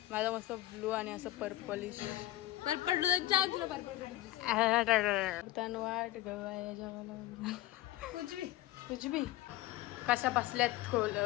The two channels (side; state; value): right; quieter; 15.7 dB